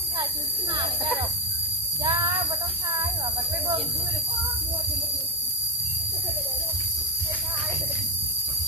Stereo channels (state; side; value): normal; both; correlation 0.16